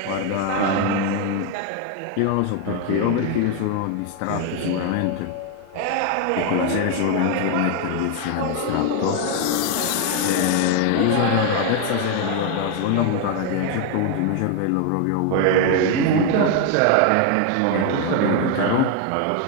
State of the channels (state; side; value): different; both; correlation 0.01